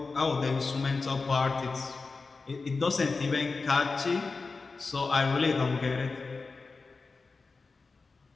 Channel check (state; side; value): quieter; right; 4.1 dB